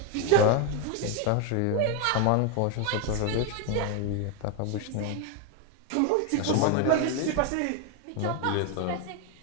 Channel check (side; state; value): both; different; correlation 0.01